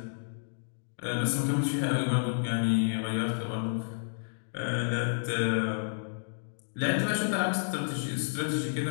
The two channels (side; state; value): right; silent; digital silence